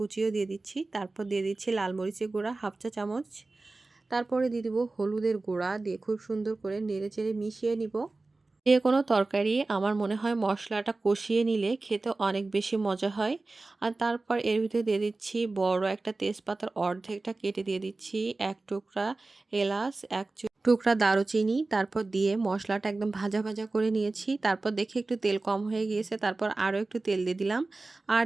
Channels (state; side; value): quieter; left; 3.3 dB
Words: দিয়ে দিচ্ছি। তারপর দিয়ে দিচ্ছি লাল মরিচের গুঁড়া 1/2 চা চামচ। তারপরে দিয়ে দিব হলুদের গুঁড়া, দিয়ে খুব সুন্দর করে নেড়ে চেড়ে মিশিয়ে নিব। যে কোনো তরকারি আমার মনে হয় মশলাটা কষিয়ে নিলে খেতে অনেক বেশি মজা হয়। আর তারপর এর ভিতরে দিয়ে দিচ্ছি বড় একটা তেজপাতার অর্ধেকটা কেটে দিয়ে দিচ্ছি, 1 টুকরা এলাচ, 1 টুকরা দারুচিনি। তারপর দিয়ে মশলাটা একদম ভাজা ভাজা করে নিয়েছি। তারপর দেখে একটু তেল কম হয়ে গিয়েছে, তারপর আরও একটু তেল দিয়ে দিলাম। আর